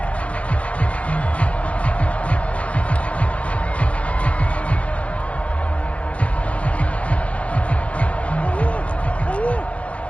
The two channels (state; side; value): late; right; 0.063 ms